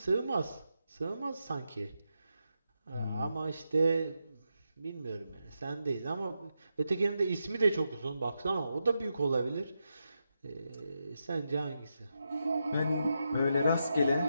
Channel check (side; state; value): both; inverted; correlation -0.85